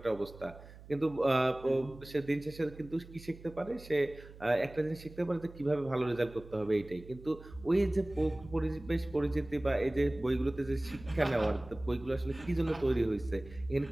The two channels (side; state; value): right; noise; hum, 18 dB below the sound